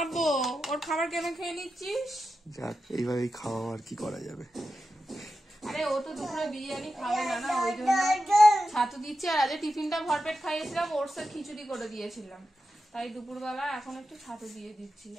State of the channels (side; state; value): both; normal; correlation 0.91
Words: ওর খাবার কেন খেয়ে নিচ্ছিস? যাক এইভাবেই খাওয়া, আর কি করা যাবে। আরে ও তো দুপুরে বিরিয়ানি খাবে না, না ওই জন্য ছাতু দিচ্ছে। আর আজ টিফিনটা ভরপেট খাইয়েছিলাম, ওটসের খিচুড়ি করে দিয়েছিলাম। তাই দুপুরবেলা এখন একটু ছাতু দিয়ে দিচ্ছি।